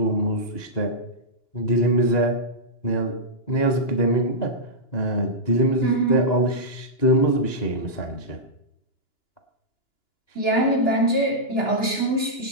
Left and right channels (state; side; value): late; right; 2.9 ms